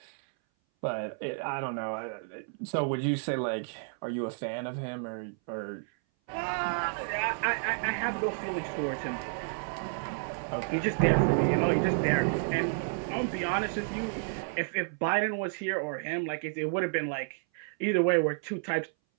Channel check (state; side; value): silent; left; 57 dB below the other